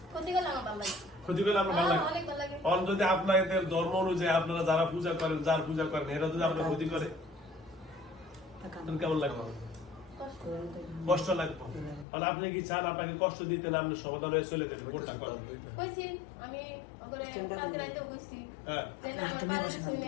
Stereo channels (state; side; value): drops out; right; at 12.1 s